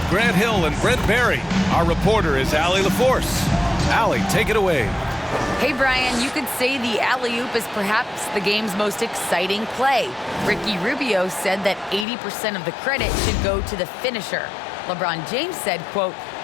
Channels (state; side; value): drops out; right; at 12.1 s